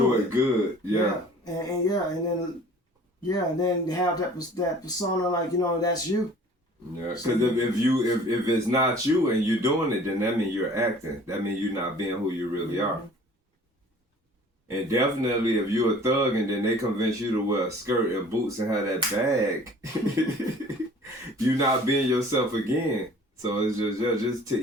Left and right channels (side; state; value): both; normal; correlation 0.49